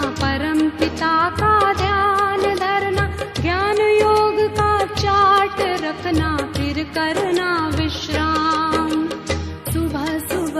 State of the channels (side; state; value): both; identical; correlation 1.00